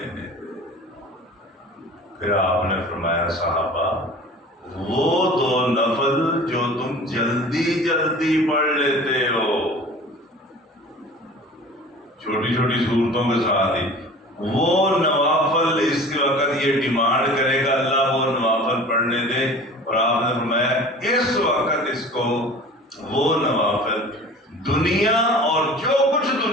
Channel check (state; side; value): normal; both; correlation 0.42